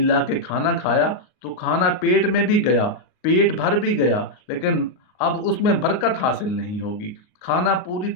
کے کھانا کھایا تو کھانا پیٹ میں بھی گیا، پیٹ بھر بھی گیا، لیکن اب اس میں برکت حاصل نہیں ہوگی، کھانا پوری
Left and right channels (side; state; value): right; late; 38 ms